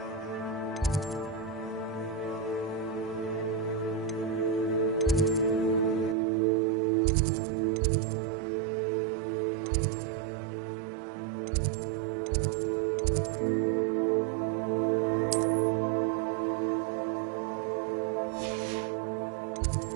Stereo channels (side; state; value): left; drops out; at 6.2 s